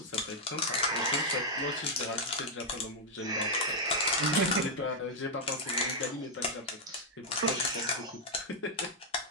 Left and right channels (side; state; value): both; normal; correlation -0.03